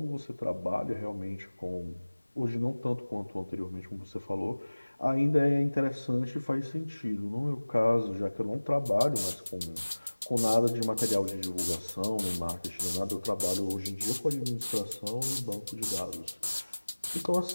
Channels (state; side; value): inverted; both; correlation -1.00